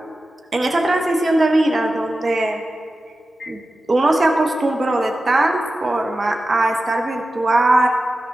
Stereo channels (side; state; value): both; normal; correlation 0.93